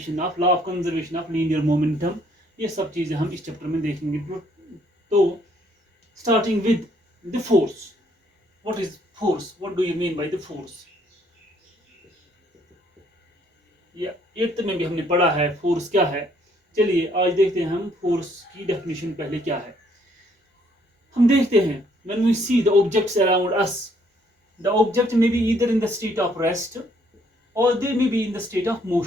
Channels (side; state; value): both; normal; correlation 0.66